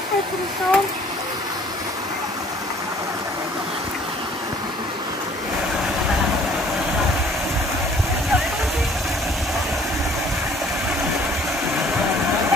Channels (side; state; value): both; normal; correlation 0.56